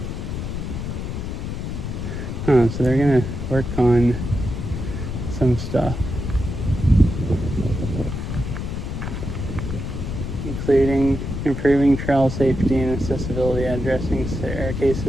Huh, so they're gonna work on some stuff, including improving trail safety and accessibility, addressing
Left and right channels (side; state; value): left; noise; rumble, 5 dB below the sound